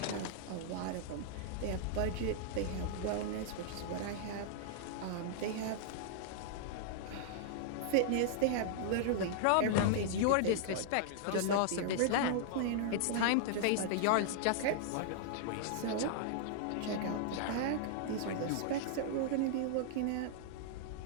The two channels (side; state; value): both; different; correlation -0.01